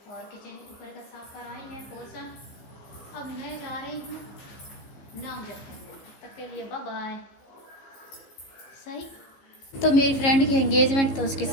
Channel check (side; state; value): right; late; 15 ms